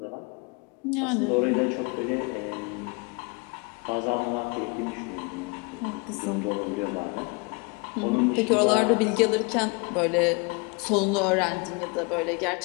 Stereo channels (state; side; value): quieter; right; 29.4 dB